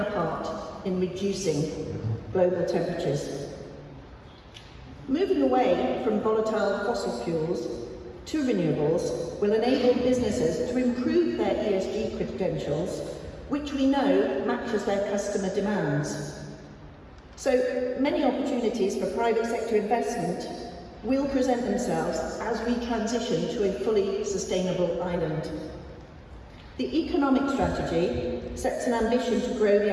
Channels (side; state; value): both; identical; correlation 1.00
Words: part in reducing global temperatures. Moving away from volatile fossil fuels to renewables will enable businesses to improve their ESG credentials, which we know matches their customer demands. So many opportunities for private sector investment will present themselves as we transition to a fully sustainable island. The economic strategy sets an ambition to grow the